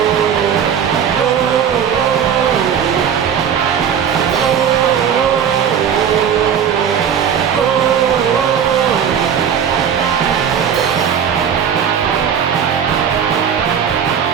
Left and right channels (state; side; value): quieter; left; 8.0 dB